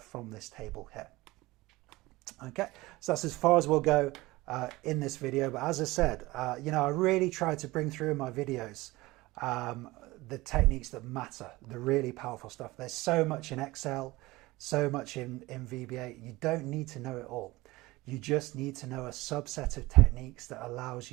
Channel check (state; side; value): quieter; left; 20.2 dB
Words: this table here. Okay, so that's as far as we'll go in this video, but as I said, I really try to bring through in my videos the techniques that matter, the really powerful stuff. There's so much in Excel, so much in VBA. You don't need to know it all. You just need to know a subset of techniques that allows